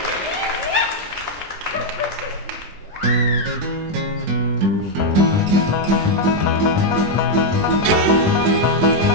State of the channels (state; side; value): late; left; 20 ms